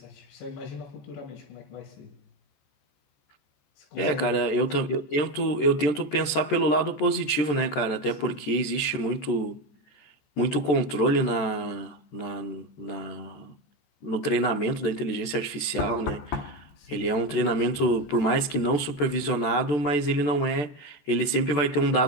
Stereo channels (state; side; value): late; right; 14 ms